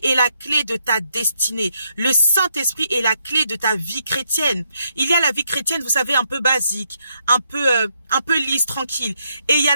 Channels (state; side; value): inverted; both; correlation -0.77